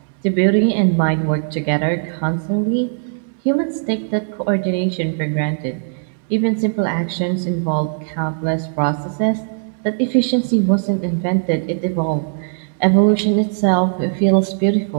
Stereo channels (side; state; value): left; silent; digital silence